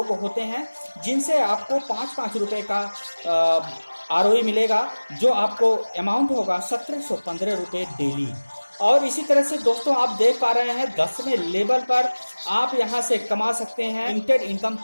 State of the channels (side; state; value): both; inverted; correlation -1.00